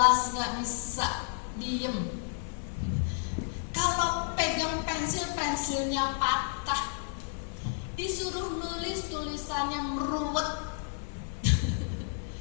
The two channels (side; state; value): right; silent; digital silence